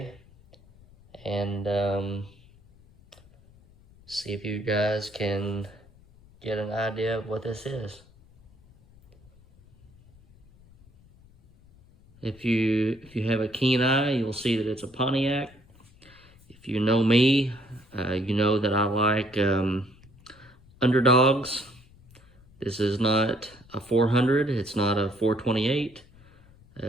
and see if you guys can get an idea of what this is. If you have a keen eye, you'll see that it's a Pontiac. If you know me, you know that I like underdogs. This is not a 400, it's not a 428,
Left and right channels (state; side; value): noise; left; rumble, 26 dB below the sound